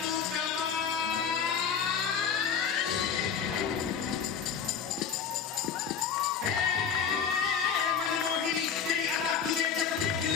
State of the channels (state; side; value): quieter; right; 7.2 dB